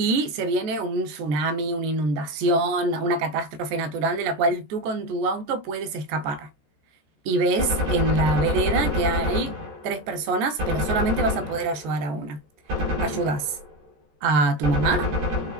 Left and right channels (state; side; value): late; left; 13 ms